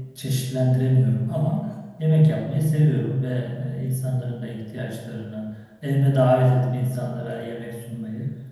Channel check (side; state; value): both; identical; correlation 1.00